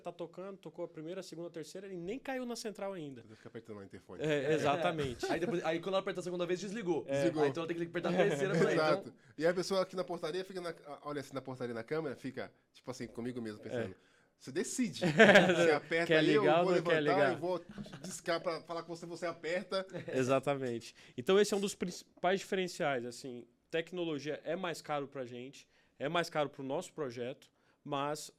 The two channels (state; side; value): identical; both; correlation 1.00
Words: tá tocando, tocou a primeira, a segunda, a terceira e nem caiu na central ainda. Você fica apertando o interfone. Exatamente. Aí quando ela aperta a segunda vez, desligou. Desligou. Aí então ela tem que apertar a terceira pra ir. Exato. Então... E aí a pessoa aqui na portaria fica olha assim na portaria na câmera, fica tipo assim, comigo mesmo, pensando. Você decide. Você aperta quer ali, ligar eu vou ou não quer levantar, ligar? eu vou discar para falar com você, você aperta. Exatamente. Então esse é um dos principais diferenciais, assim, tecnologia é mais caro para a gente, é mais caro para o nosso projeto, mas